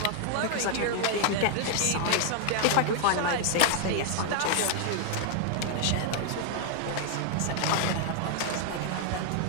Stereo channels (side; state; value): both; different; correlation 0.00